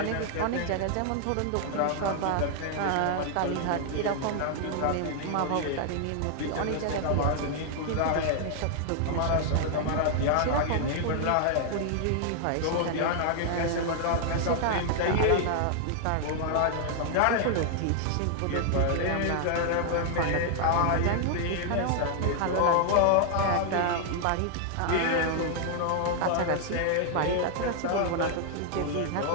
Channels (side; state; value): both; different; correlation 0.00